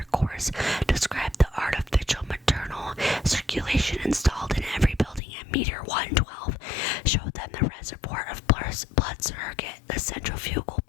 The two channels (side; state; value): right; drops out; at 5.2 s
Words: course, described the artificial maternal circulation installed in every building at meter 112, showed them the reservoir of blood surrogate, the centrifugal